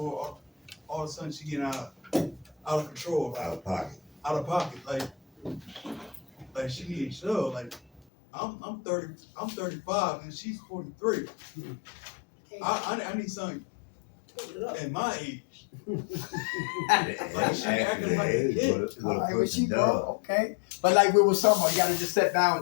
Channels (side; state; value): right; drops out; at 8.0 s